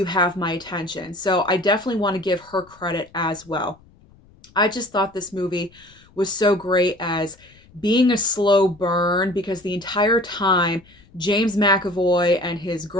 have my attention. So I definitely want to give her credit as well. I just thought this movie was so great as being a slow burn because the entire time James McAvoy and his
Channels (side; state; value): left; noise; rumble, 28 dB below the sound